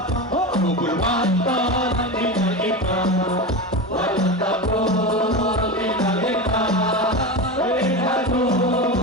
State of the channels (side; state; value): both; normal; correlation 0.22